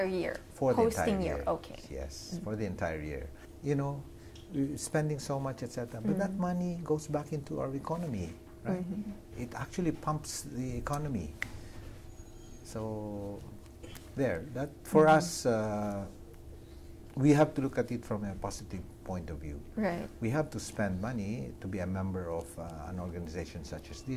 year? For the entire year. Okay. Yes, for the entire year. We're spending so much, etc. But that money goes back into our economy, right? It actually pumps the economy. So, that for us, we have to look at it from a positive point of view. Right. We have to spend money to be a member of an organization such as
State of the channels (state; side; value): identical; both; correlation 1.00